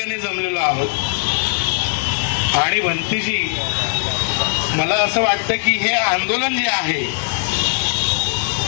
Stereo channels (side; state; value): right; silent; 66 dB below the other